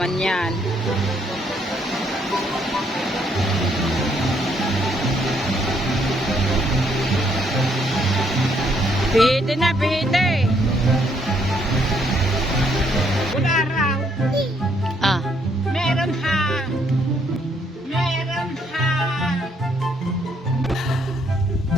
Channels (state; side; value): normal; both; correlation 0.70